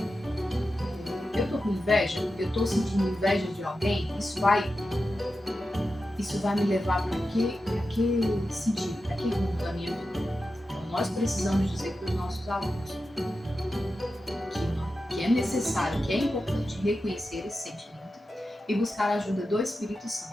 eu tô com inveja, eu tô sentindo inveja de alguém, isso vai me levar para que sentido, para que rumo da minha vida? Então, nós precisamos dizer para os nossos alunos que é necessário, que é importante reconhecer esse sentimento e buscar a ajuda do Espírito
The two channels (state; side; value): normal; both; correlation 0.91